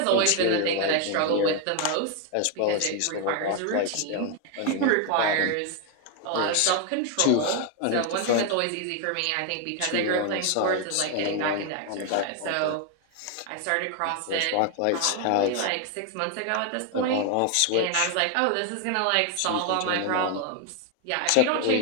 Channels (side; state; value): both; different; correlation 0.01